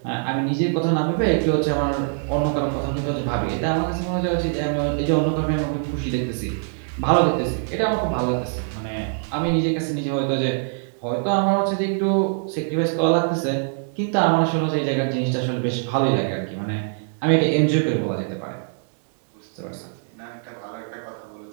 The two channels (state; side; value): silent; left; 63 dB below the other